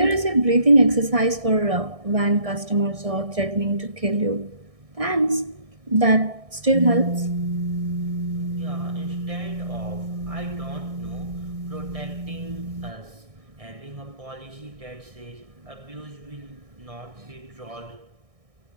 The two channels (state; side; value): late; left; 1.6 ms